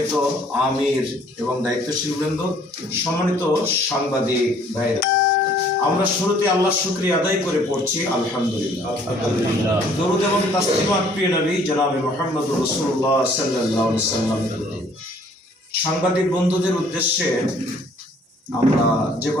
আমির এবং দায়িত্বশীল বৃন্দ, সম্মানিত সাংবাদিক ভাইরা, আমরা শুরুতে আল্লাহর শুকরিয়া আদায় করে পড়ছি আলহামদুলিল্লাহ। দরুদ এবং তাসলিমাত প্রিয় নবী জনাবে মুহাম্মদ রাসূলুল্লাহ সাল্লাল্লাহু আলাইহি ওয়াসাল্লাম। সাংবাদিক বন্ধুদের উদ্দেশ্যে আমরা যে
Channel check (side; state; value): both; normal; correlation 0.59